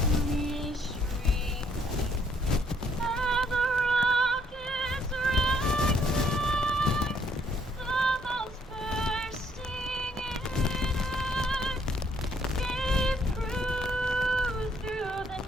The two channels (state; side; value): normal; both; correlation 0.68